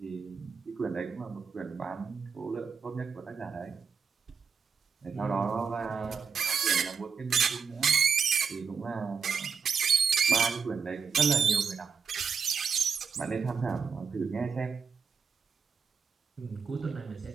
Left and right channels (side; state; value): left; quieter; 6.1 dB